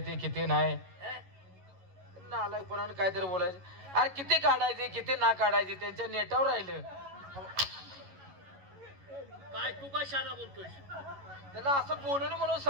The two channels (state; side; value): late; left; 11 ms